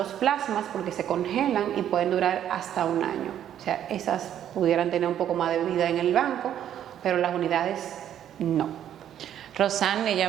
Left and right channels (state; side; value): quieter; left; 10.4 dB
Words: plasmas, porque se congelan y pueden durar hasta un año. O sea, esas pudieran tener un poco más de vida en el banco, pero las unidades no. Rosani,